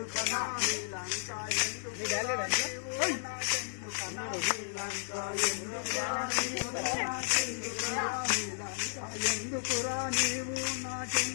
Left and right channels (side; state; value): right; silent; digital silence